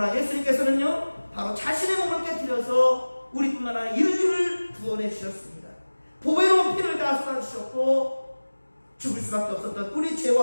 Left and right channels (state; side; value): inverted; both; correlation -1.00